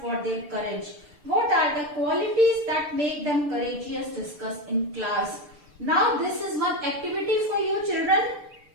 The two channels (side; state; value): left; late; 6.8 ms